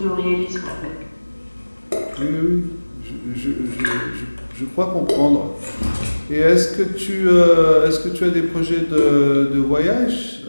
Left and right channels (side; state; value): both; inverted; correlation -1.00